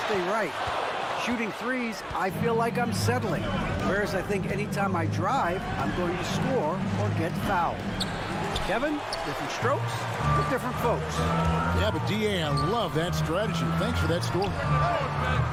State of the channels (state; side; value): identical; both; correlation 1.00